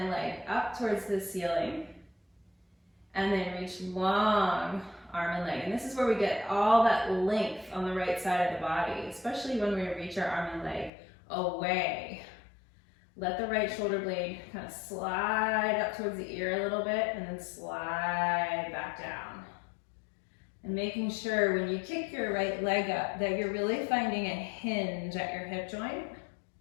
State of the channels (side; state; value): right; drops out; at 10.9 s